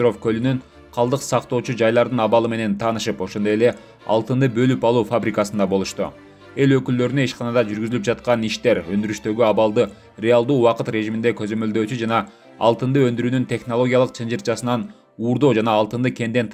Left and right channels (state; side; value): identical; both; correlation 1.00